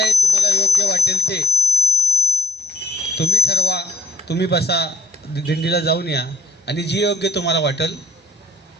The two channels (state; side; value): normal; both; correlation 0.64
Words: तुम्हाला योग्य वाटेल ते तुम्ही ठरवा, तुम्ही बसा, दिंडीला जाऊन या आणि जी योग्य तुम्हाला वाटेल